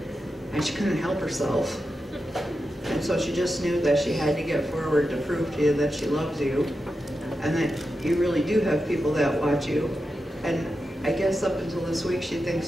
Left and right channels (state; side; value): normal; both; correlation 0.89